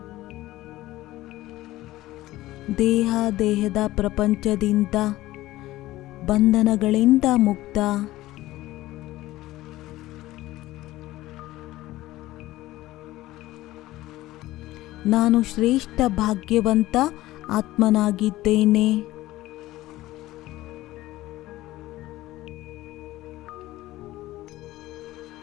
ದೇಹದ ಪ್ರಪಂಚದಿಂದ ಬಂಧನಗಳಿಂದ ಮುಕ್ತ. ನಾನು ಶ್ರೇಷ್ಠ ಭಾಗ್ಯವಂತ ಆತ್ಮನಾಗಿದ್ದೇನೆ.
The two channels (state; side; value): quieter; right; 16.7 dB